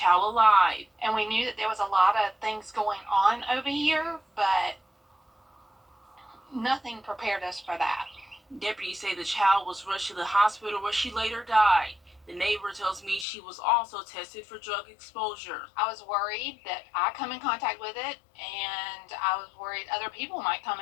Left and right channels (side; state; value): right; drops out; at 13.2 s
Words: alive. And we knew that there was a lot of things going on over here, but nothing prepared us for that. Deputies say the child was rushed to the hospital where she later died. The neighbor tells me she was also tested for drug exposure. I was worried that I come in contact with it, and I was worried other people might come